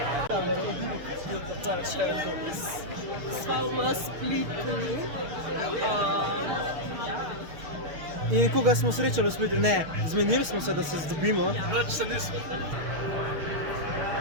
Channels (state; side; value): late; left; 6.7 ms